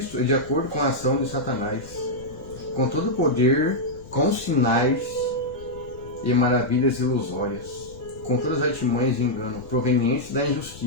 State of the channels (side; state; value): left; noise; rumble, 18 dB below the sound